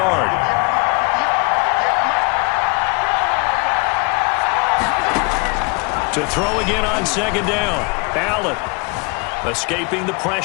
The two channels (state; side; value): quieter; right; 30.1 dB